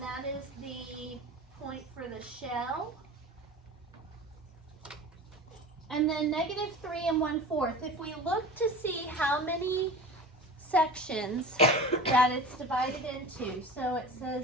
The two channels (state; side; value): normal; both; correlation 0.35